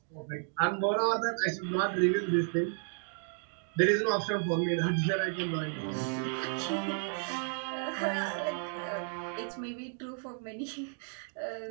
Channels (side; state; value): left; silent; 56 dB below the other